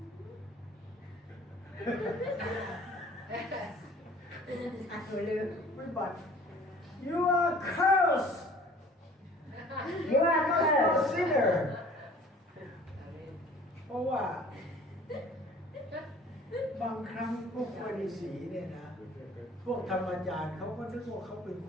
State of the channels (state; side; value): normal; both; correlation 0.50